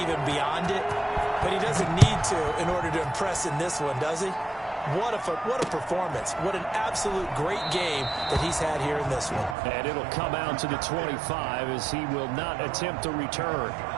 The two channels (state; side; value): drops out; left; at 9.6 s